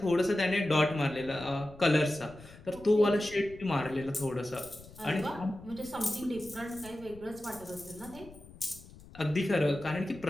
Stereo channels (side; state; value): left; noise; rumble, 20 dB below the sound